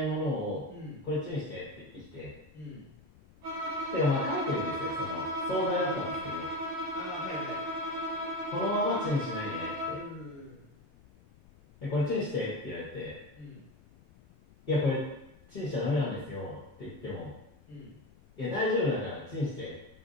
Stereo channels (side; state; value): left; noise; rumble, 25 dB below the sound